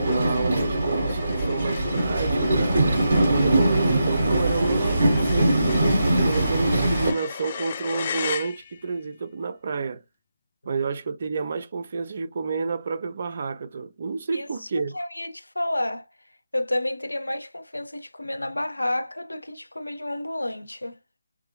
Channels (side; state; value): both; inverted; correlation -0.86